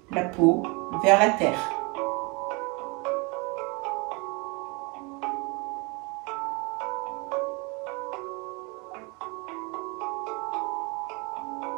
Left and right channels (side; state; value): left; quieter; 29.5 dB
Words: la peau vers la terre.